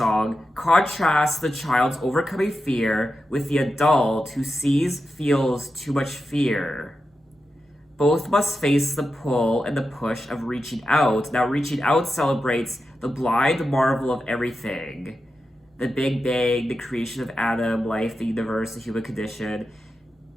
contrasts the child's overcoming fear with the adult who feels too much fear. Both must face the pull and the push of reaching out. Now, reaching out celebrates the blind marvel of everything: the Big Bang, the creation of Adam, life, the universe, the human condition.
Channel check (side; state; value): both; normal; correlation 0.90